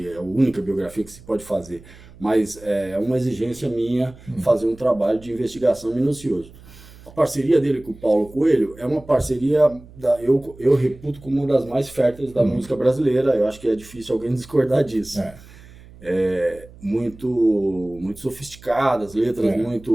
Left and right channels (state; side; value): noise; right; hum, 21 dB below the sound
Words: é a única biografia que se pode fazer, mas é uma exigência minha fazer um trabalho de investigação minucioso. A parceria dele com o Paulo Coelho é uma parceria, eu reputo como uma das mais férteis da música brasileira. Eu acho que é difícil alguém discordar disso. Muito, muito sofisticadas, letras